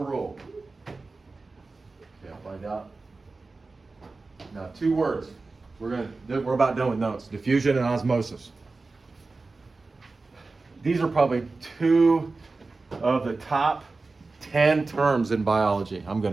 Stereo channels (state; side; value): quieter; left; 3.7 dB